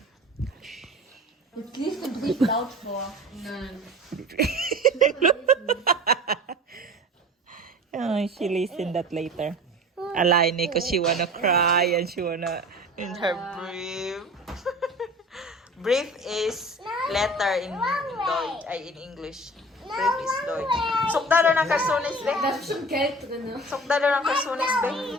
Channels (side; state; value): both; normal; correlation 0.39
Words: Jetzt liest du Brief laut vor. Nein. Oh, she listen that later. Alaine, because she wanna cry and she wanna in her brief. Brief is letter in Deutsch, ay in English. Brief is Deutsch. Sukdalo ng karsones, be. Da ist bestimmt Geld drin. Sukdalo ng karsones, be.